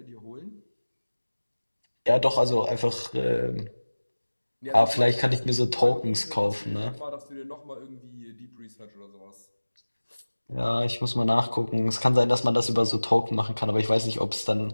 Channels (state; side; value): inverted; both; correlation -1.00